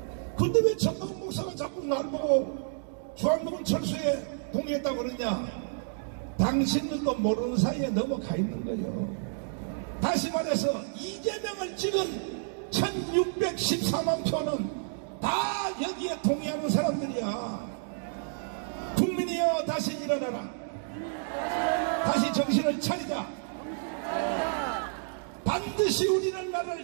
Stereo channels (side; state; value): left; silent; digital silence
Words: 근데 왜 전광훈 목사가 자꾸 날 보고 주한미군 철수에 동의했다고 그러냐. 당신들도 모르는 사이에 넘어가 있는 거예요. 다시 말해서 이재명을 찍은 1614만 표는 다 여기에 동의하는 사람들이야. 국민이여 다시 일어나라. 다시 정신을 차리자. 반드시 우리는